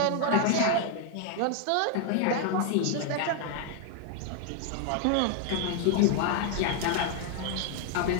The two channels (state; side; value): different; both; correlation 0.00